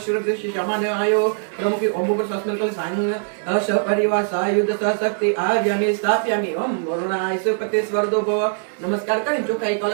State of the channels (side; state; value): left; silent; digital silence